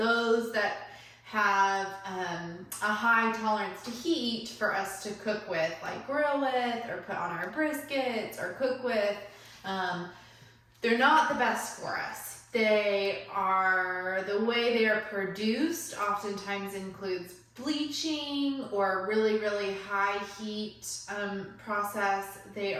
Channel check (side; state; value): both; identical; correlation 1.00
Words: that have a high tolerance to heat for us to cook with, like grill with or put on our briskets or cook with. They're not the best for us. The way they are produced oftentimes includes bleaching or really high heat process. They